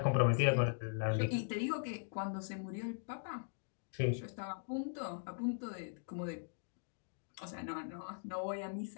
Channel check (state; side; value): silent; right; digital silence